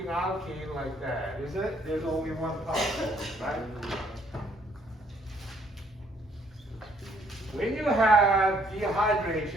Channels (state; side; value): normal; both; correlation 0.66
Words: alkene like that, is it? There's only one particle, right? When you have